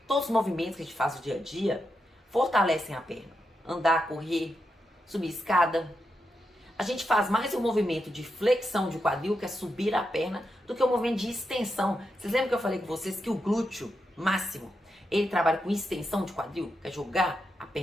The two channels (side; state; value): both; normal; correlation 0.85